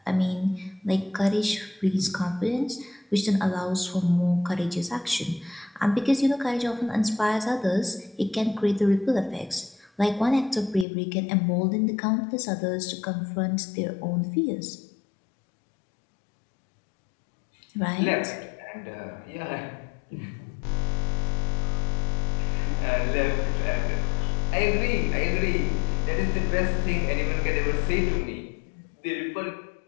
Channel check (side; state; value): right; drops out; at 10.9 s